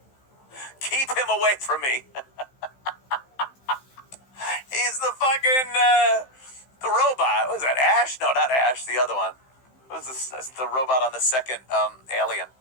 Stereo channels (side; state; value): right; late; 15 ms